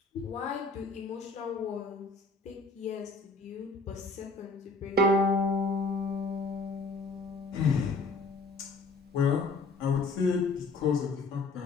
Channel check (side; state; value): right; quieter; 3.5 dB